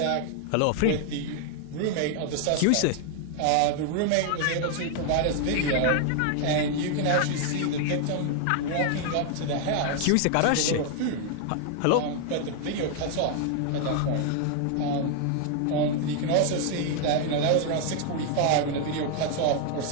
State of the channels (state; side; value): different; both; correlation 0.00